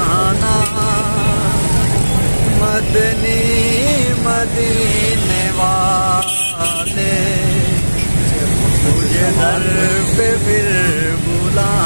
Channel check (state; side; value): inverted; both; correlation -1.00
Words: मदनी मदीने वाले तुझे दर पे फिर